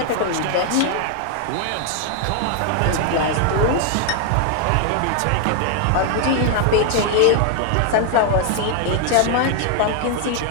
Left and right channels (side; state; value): both; different; correlation 0.00